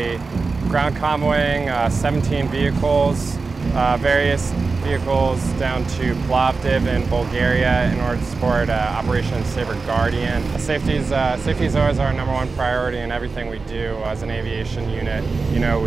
ground convoying 17 vehicles, various vehicles down to Plovdiv in Bulgaria in order to support Operation Saber Guardian. Safety is always our #1 priority in everything we do as an aviation unit. You know,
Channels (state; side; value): quieter; left; 4.2 dB